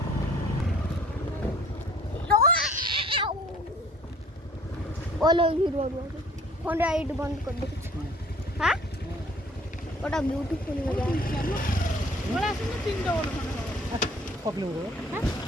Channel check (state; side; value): normal; both; correlation 0.54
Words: बोलो हीरो फोन राइड बंद कर दो हाँ बड़ा ब्यूटीफुल लगा